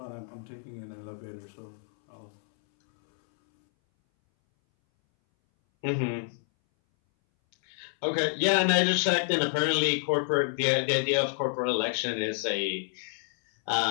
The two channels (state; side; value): silent; right; 59 dB below the other